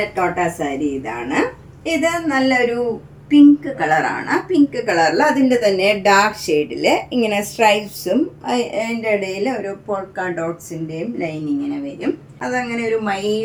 കോട്ട സാരി ഇതാണ്. ഇത് നല്ലൊരു പിങ്ക് കളറാണ്. പിങ്ക് കളറിൽ അതിൻ്റെ തന്നെ ഡാർക്ക് ഷെയ്ഡിൽ ഇങ്ങനെ സ്ട്രൈപ്സും അതിൻ്റെ ഇടയിൽ ഒരു പോൾക്ക ഡോട്ട്സിൻ്റെയും ലൈൻ ഇങ്ങനെ വരും. അതങ്ങനെ ഒരു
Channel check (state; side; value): identical; both; correlation 1.00